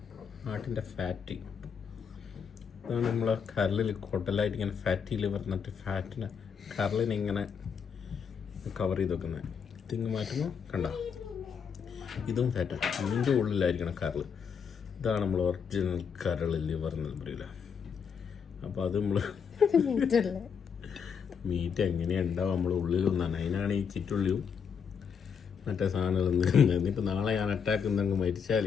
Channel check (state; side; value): quieter; right; 6.7 dB